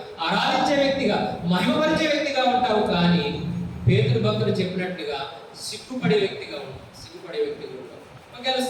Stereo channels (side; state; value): both; identical; correlation 1.00